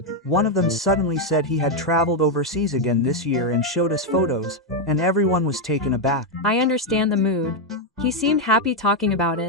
one of them suddenly said he had traveled overseas again this year and showed us photos, and everyone was taken aback. I understand the mood. He seemed happy talking about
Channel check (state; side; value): normal; both; correlation 0.02